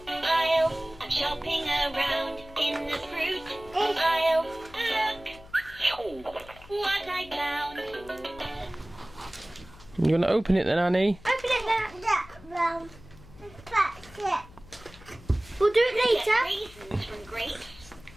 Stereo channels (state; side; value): noise; left; hum, 21 dB below the sound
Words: aisle. I'm shopping around in the fruit aisle. Look what I found. You gonna open it then, Annie? Open it there. That's it. We'll do it later. Get raisins from grapes.